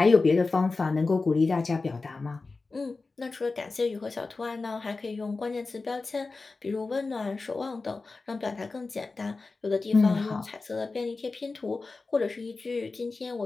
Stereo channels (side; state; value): right; quieter; 3.8 dB